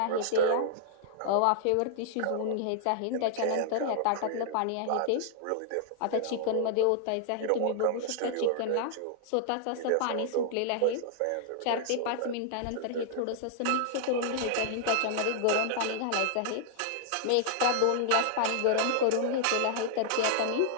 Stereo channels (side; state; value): both; different; correlation -0.01